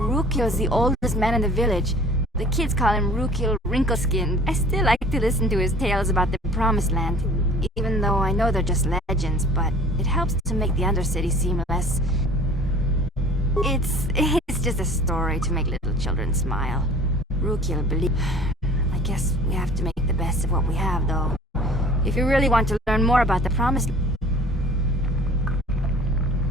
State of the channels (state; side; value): normal; both; correlation 0.47